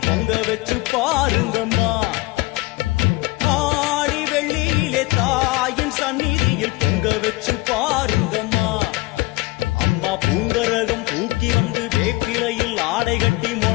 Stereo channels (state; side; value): quieter; right; 21.5 dB